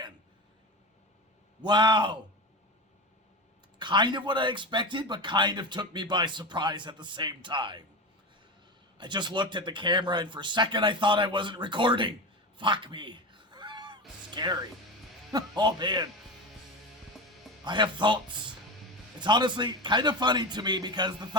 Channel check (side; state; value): both; normal; correlation 0.23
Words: Wow. Kind of what I expected, but kind of took me by surprise at the same time. I just looked at the camera and for a second I thought I wasn't recording. Fuck me. Scary. Oh man. I have thoughts. It's honestly kind of funny to me because the